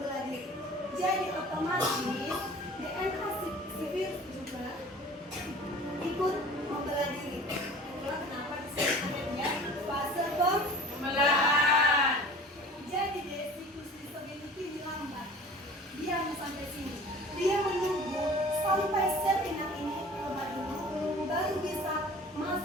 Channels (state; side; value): normal; both; correlation 0.43